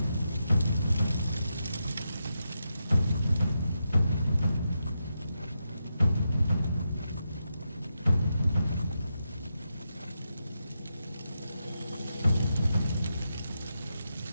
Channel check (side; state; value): both; inverted; correlation -0.86